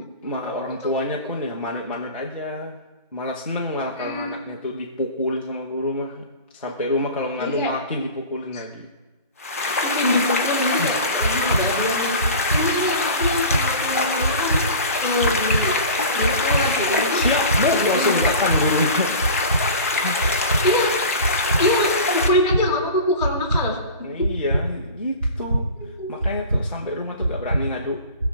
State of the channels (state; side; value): inverted; both; correlation -0.35